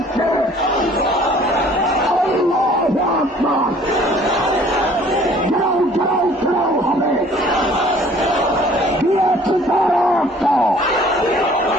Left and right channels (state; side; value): normal; both; correlation 0.54